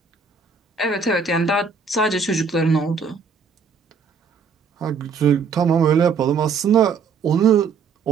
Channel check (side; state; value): left; quieter; 5.5 dB